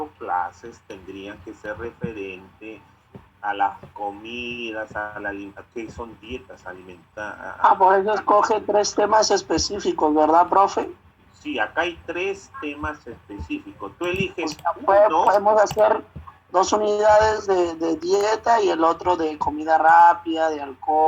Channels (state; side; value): identical; both; correlation 1.00